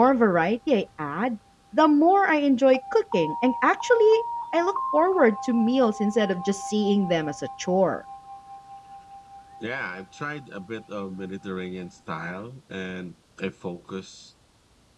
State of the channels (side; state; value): both; identical; correlation 1.00